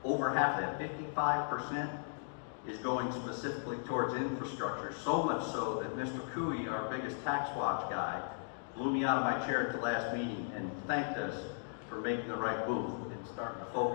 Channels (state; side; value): silent; right; digital silence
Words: over half of that, 55%, is going specifically towards infrastructure, so much so that Mr. Cooey, our biggest tax watch guy, blew me out of my chair at the last meeting and thanked us for making the right move and starting to